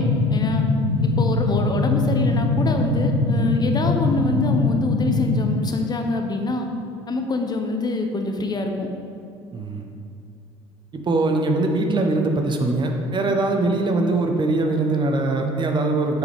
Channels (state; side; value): normal; both; correlation 0.49